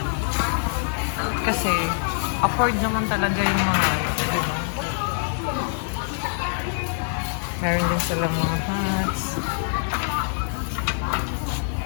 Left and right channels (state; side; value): silent; right; digital silence